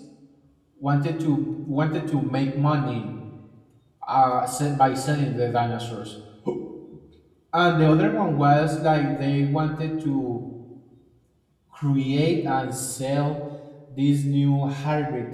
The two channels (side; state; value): both; identical; correlation 1.00